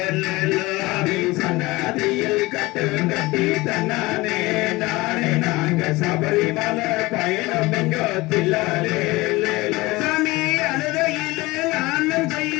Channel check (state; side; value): quieter; right; 21.1 dB